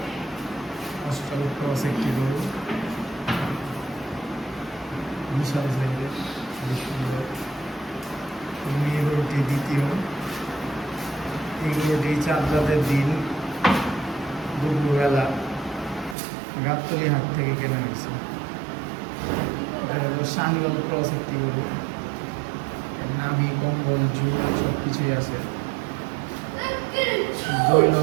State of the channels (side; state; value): left; drops out; at 16.2 s